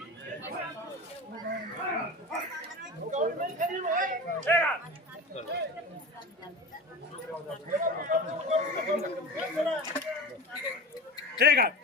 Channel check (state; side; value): normal; both; correlation 0.30